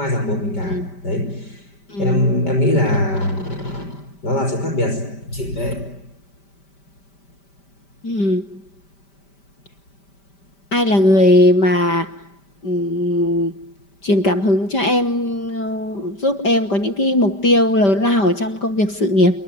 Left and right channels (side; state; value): right; late; 5.1 ms